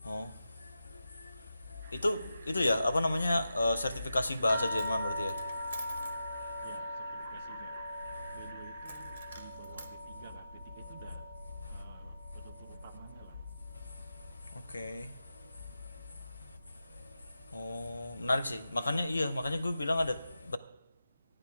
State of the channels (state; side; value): inverted; both; correlation -0.90